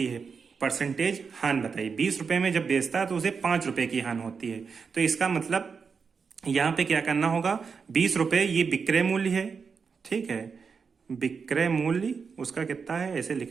है। परसेंटेज हानि बताइए। 20 रुपए में जब बेचता है तो उसे 5 रुपए की हानि होती है। तो इसका मतलब यहाँ पे क्या करना होगा, 20 रुपए ये विक्रय मूल्य है, ठीक है, विक्रय मूल्य उसका कितना है ऐसे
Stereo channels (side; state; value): left; quieter; 5.6 dB